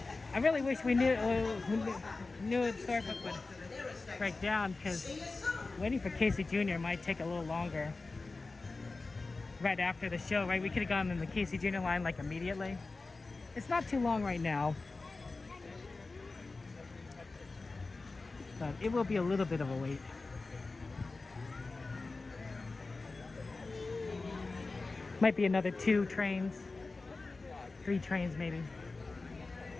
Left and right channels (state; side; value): quieter; right; 3.6 dB